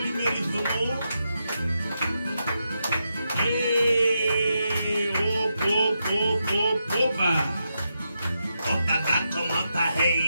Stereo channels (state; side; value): inverted; both; correlation -0.85